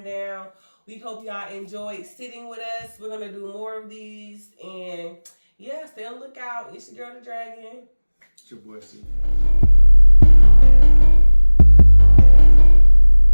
We hope y'all enjoyed sitting with us. We're gonna do more of these, and yeah, stay on the lookout. It's your girl, the Dragon. It's your boy, Steve.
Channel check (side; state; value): both; inverted; correlation -1.00